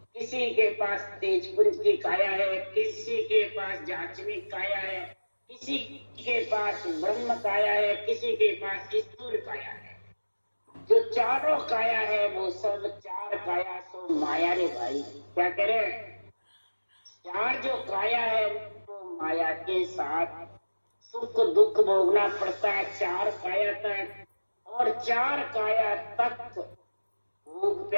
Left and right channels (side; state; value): both; inverted; correlation -1.00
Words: किसी के पास तेजपुंज की काया है, किसी के पास जाचनिक काया है, किसी के पास ब्रह्म काया है, किसी के पास स्थूल काया है। जो चारों काया है वो सब चार काया सो माया रे भाई। क्या करें? चार जो काया है वो माया के साथ सुख दुख भोगना पड़ता है चार काया तक, और चार काया तक भूख